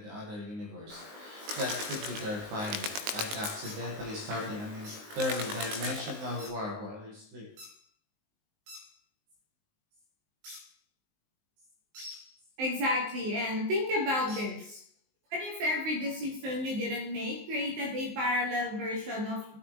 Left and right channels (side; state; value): left; late; 19 ms